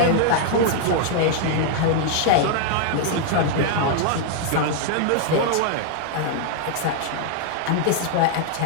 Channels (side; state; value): both; different; correlation 0.00